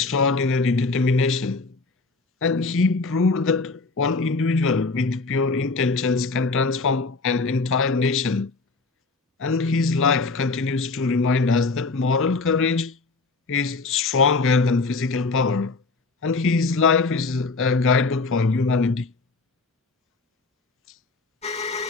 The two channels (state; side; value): quieter; right; 3.9 dB